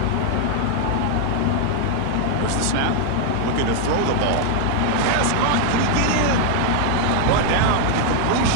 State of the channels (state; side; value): different; both; correlation 0.00